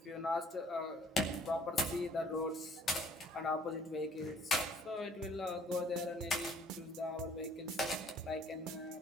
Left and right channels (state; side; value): normal; both; correlation 0.57